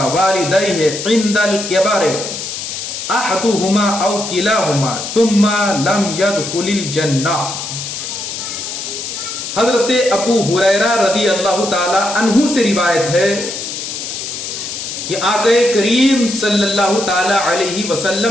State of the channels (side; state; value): left; noise; hiss, 6 dB below the sound